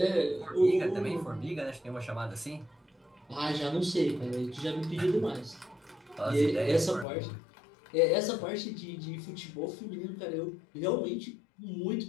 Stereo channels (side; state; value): right; drops out; at 7.1 s